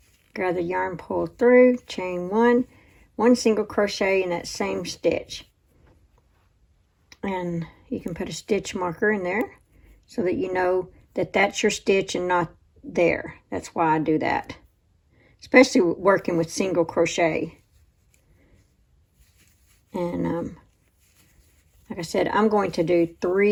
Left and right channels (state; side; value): identical; both; correlation 1.00